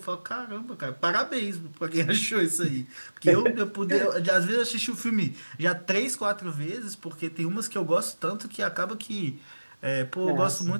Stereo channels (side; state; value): both; inverted; correlation -1.00